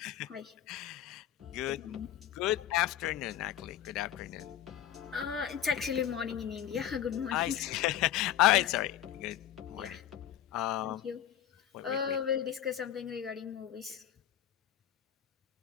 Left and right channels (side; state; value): right; quieter; 11.1 dB